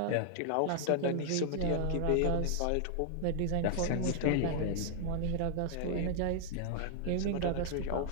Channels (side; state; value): both; different; correlation 0.00